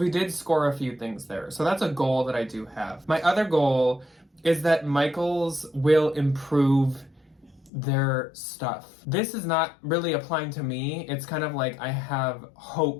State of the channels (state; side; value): drops out; right; at 7.7 s